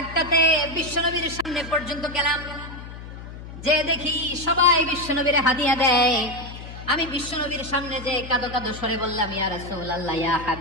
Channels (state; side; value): noise; left; hum, 12 dB below the sound